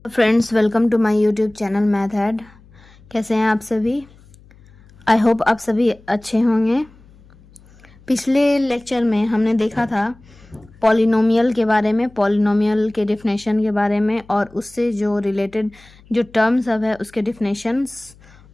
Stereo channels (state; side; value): noise; left; hum, 26 dB below the sound